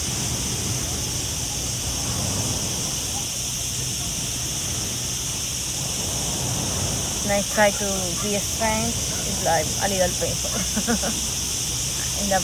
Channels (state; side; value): identical; both; correlation 1.00